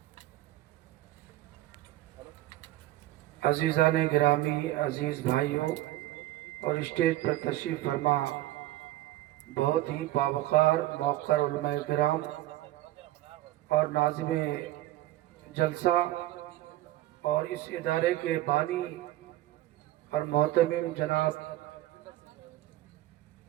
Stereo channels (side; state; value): left; quieter; 15.7 dB